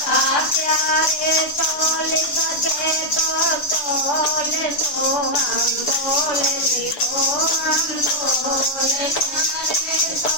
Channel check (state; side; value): late; right; 6.9 ms